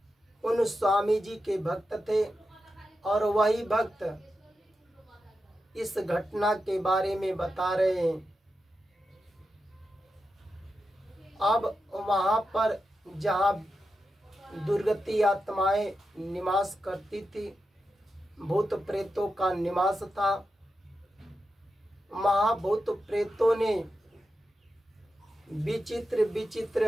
उन स्वामी जी के भक्त थे। और वही भक्त इस घटना के बारे में बता रहे हैं। अब वहां पर जहाँ दुर्गति आत्माएं निवास करती थी, भूत प्रेतों का निवास था, वहाँ भूत प्रेतों ने विचित्र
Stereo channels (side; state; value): both; normal; correlation 0.89